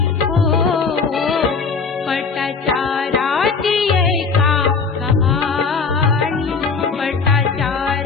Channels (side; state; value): right; quieter; 5.0 dB